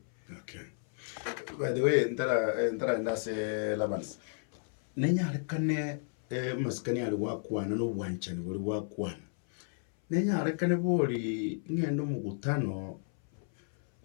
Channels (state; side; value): silent; right; 56 dB below the other